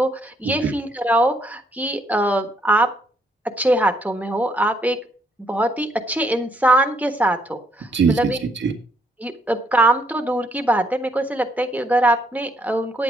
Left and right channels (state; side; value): normal; both; correlation 0.71